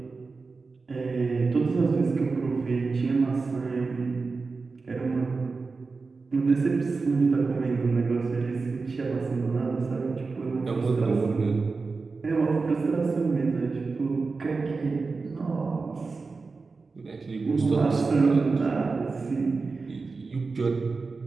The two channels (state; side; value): quieter; left; 4.2 dB